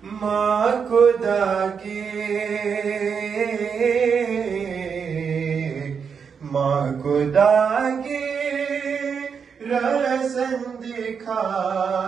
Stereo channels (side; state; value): left; quieter; 6.4 dB